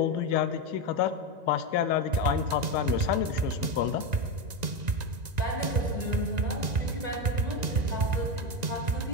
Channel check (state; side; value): late; left; 1.9 ms